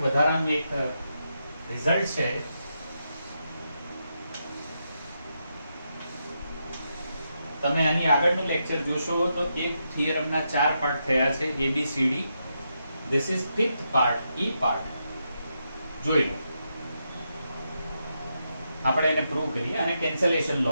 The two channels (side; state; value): both; inverted; correlation -0.84